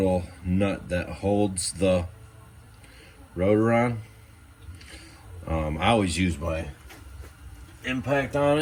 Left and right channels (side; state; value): both; identical; correlation 1.00